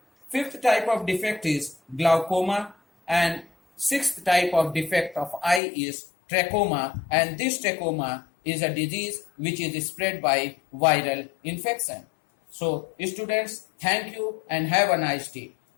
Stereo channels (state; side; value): drops out; right; at 5.6 s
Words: Fifth type of defect is glaucoma, and sixth type of defect of eye is trachoma, and this trachoma is a disease which is spread by viral infection. So students, thank you and have a nice day.